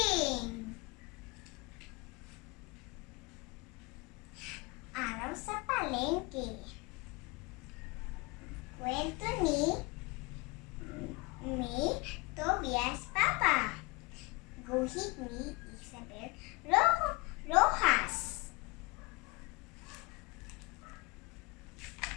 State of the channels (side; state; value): right; quieter; 25.4 dB